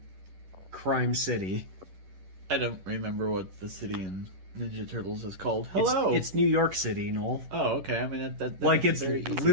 Crime City. I don't remember what the city in Ninja Turtles is called. Hello! It's New York City, Noel. Oh, okay. I mean, that Like makes it's it very easy.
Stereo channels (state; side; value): late; left; 11 ms